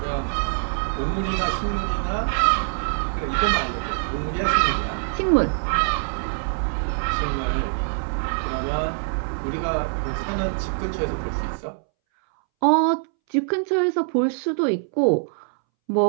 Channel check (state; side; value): silent; left; 63 dB below the other